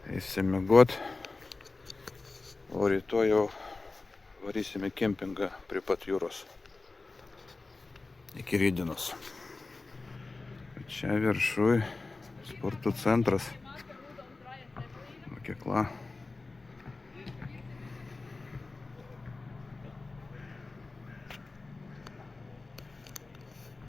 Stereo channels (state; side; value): quieter; right; 3.6 dB